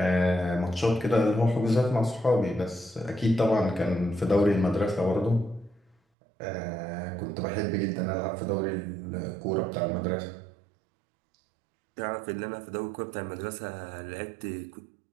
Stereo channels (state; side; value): drops out; left; at 6.0 s